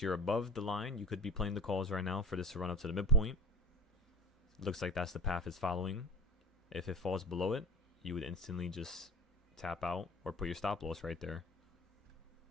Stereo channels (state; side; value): normal; both; correlation 0.39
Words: you're above the line, you could be playing the calls right now for this to run up to the midpoint. Looks like that's the path it's following. If it falls below it, you would instantly just tap out or put your stop loss right there.